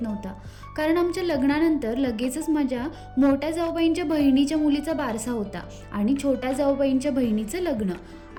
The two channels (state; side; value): identical; both; correlation 1.00